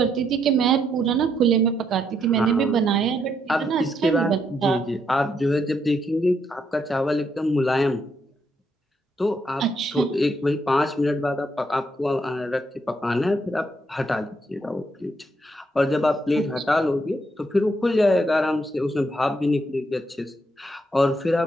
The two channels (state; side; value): normal; both; correlation 0.76